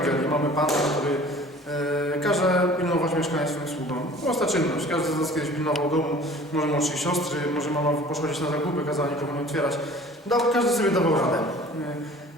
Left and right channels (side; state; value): both; normal; correlation 0.47